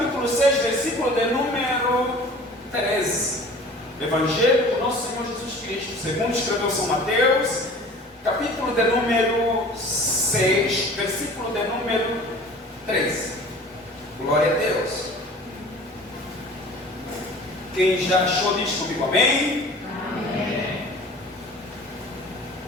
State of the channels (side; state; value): both; normal; correlation 0.44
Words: 6, versículo de número 13. Evangelho do nosso Senhor Jesus Cristo, segundo escreveu São Mateus, capítulo de número 6, versículo de número 13. Glória a Deus. Quem já achou diz comigo, amém? Amém.